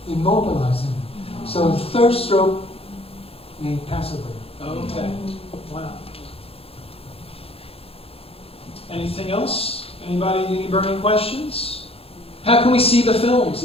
immobilized him. So the third stroke, he passed away. Okay. Wow. Anything else? Anybody, any burning questions? How can we see the films?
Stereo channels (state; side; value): late; right; 0.28 ms